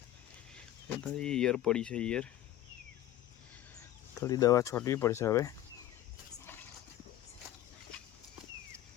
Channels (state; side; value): quieter; right; 13.3 dB